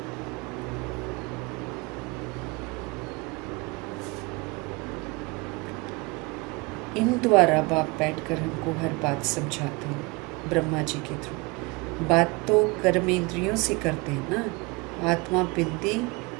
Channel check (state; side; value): quieter; left; 26.0 dB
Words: इन द्वारा बाप बैठकर हमको हर बात समझाते हैं, ब्रह्मा जी के थ्रू। बात तो कर्मेंद्रियों से करते हैं ना, आत्मा बिंदी